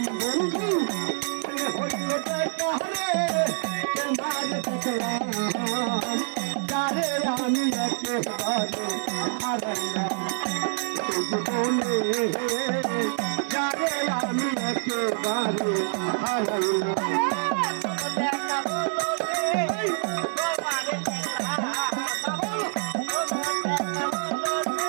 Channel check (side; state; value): left; silent; 61 dB below the other